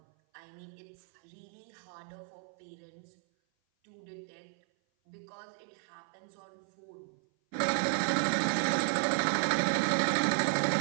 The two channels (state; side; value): silent; left; 55 dB below the other